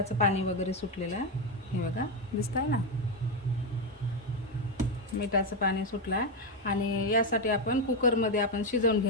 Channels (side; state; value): both; normal; correlation 0.07